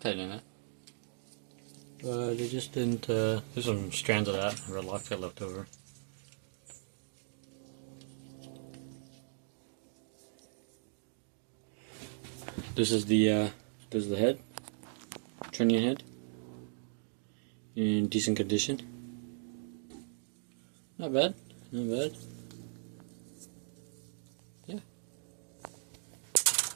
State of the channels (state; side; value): silent; left; digital silence